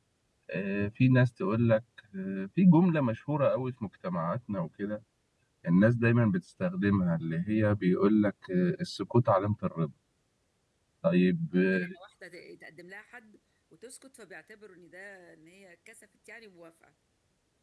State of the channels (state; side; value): identical; both; correlation 1.00